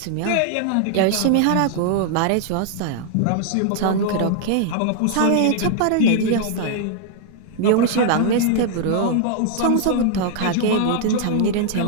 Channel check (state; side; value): different; both; correlation 0.00